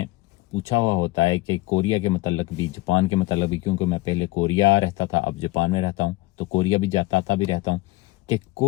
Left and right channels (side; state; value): right; quieter; 20.2 dB